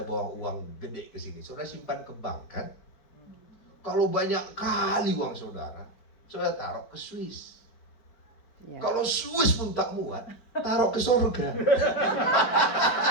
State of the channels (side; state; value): right; late; 4.8 ms